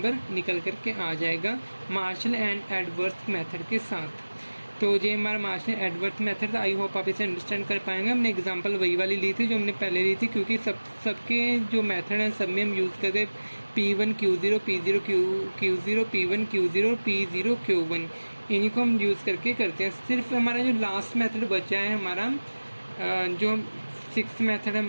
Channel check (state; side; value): inverted; both; correlation -1.00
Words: निकल करके आ जाएगा मार्शल एंड एडवर्थ मेथड के साथ। तो ये हमारा मार्शल एडवर्थ मेथड था। आई होप आप इसे अंडरस्टैंड कर पाएंगे। हमने एग्जांपल वही वाली ली थी जो हमने पहले ली थी, क्योंकि सबके जो मेथड हैं सब में हम यूज़ करते P1 Q0 P0 Q0 P1 Q0 P0 Q1, इन्हीं को हम यूज़ करके करते हैं। सिर्फ हमारा जो लास्ट मेथड बचा है हमारा जो 6th मेथड